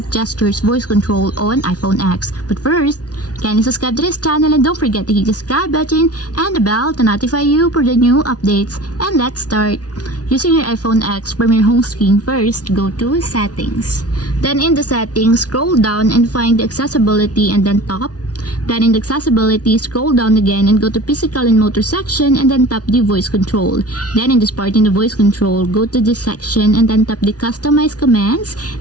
gestures voice control on iPhone X. But first, kindly subscribe to this channel and don't forget to hit the subscribe button and the bell to notify you for the new updates. And let's start. Using your iPhone X from your home screen, first go to Settings. Then in the Settings, scroll down and find the Accessibility and then Top. Then in the Accessibility, scroll down again and go to Physical and Motor section and then tap the Voice Control. Then in this part in the Voice Control, go to this section and then tap the Customize Commands.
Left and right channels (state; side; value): late; right; 0.68 ms